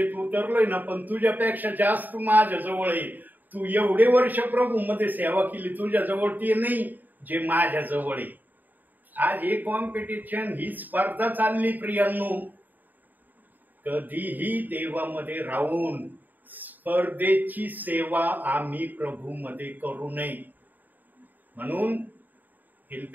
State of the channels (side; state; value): left; late; 0.086 ms